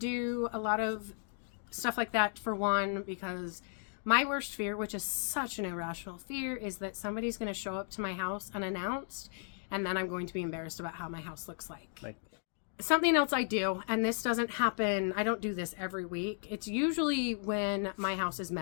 a lot of stuff like that, for one, because my worst fear, which is such an irrational fear, is that somebody's going to show up to my house unannounced, and then I'm going to be embarrassed about how my house looks like. Something else I do, and this doesn't happen, I don't do this every week. It's usually when my house is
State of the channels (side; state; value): right; silent; 54 dB below the other